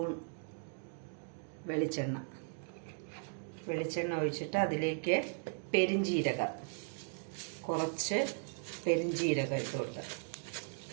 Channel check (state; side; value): silent; left; 53 dB below the other